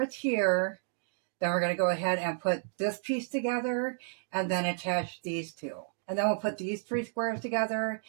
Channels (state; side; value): silent; left; digital silence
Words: here, then we're going to go ahead and put this piece together and then attach these 2, and then we'll put these 3 squares together